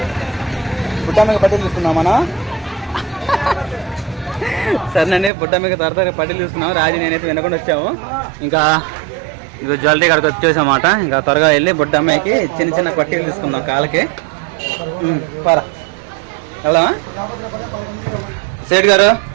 బుట్టమ్మకి పట్టీలు తీసుకున్నాం మనం. సరేనండి, బుట్టమ్మకి త్వరగా పట్టీలు తీసుకున్నాం. రాజు నేనైతే వినకుండా వచ్చాము. ఇంకా ఇది జ్యువెలరీ కాడికి వచ్చేసామాట. ఇంకా త్వరగా వెళ్ళి బుట్టమ్మకి చిన్న చిన్న పట్టీలు తీసుకుందాం కాళ్ళకి. పరా వెళ్దామా? సేట్ గారు,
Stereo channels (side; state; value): left; drops out; at 5.3 s